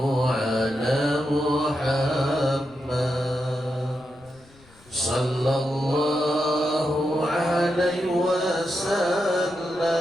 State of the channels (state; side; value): noise; left; rumble, 27 dB below the sound